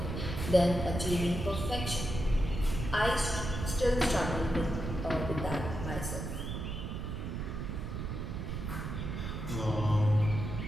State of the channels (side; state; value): right; noise; rumble, 4 dB below the sound